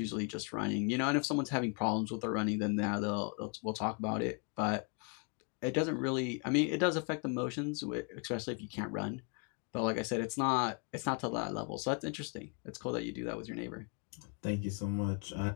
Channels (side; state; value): right; quieter; 36.8 dB